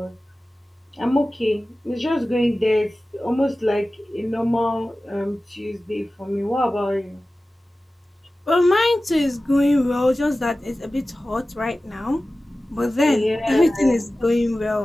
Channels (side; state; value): both; normal; correlation 0.96